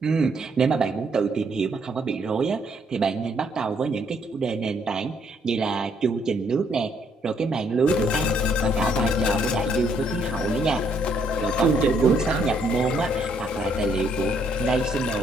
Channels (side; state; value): both; normal; correlation 0.69